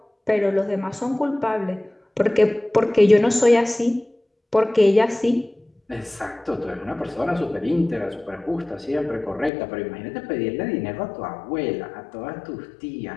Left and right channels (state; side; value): drops out; right; at 9.5 s